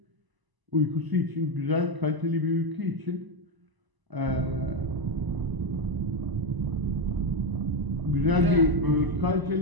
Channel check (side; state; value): left; late; 1.0 ms